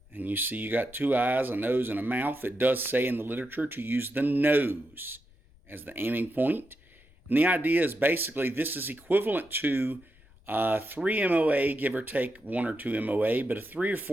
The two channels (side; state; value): left; noise; rumble, 28 dB below the sound